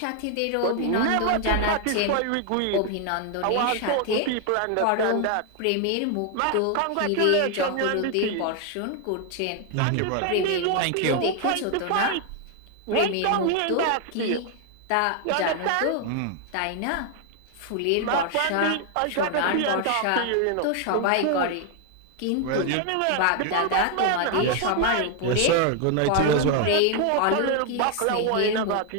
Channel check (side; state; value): both; different; correlation 0.01